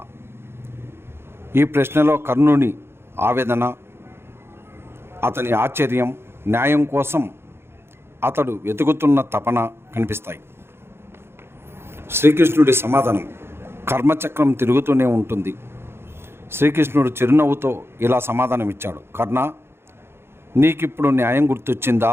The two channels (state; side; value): late; left; 0.12 ms